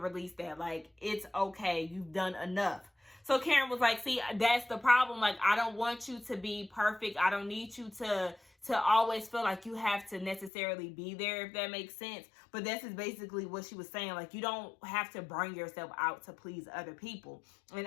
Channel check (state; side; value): drops out; right; at 10.5 s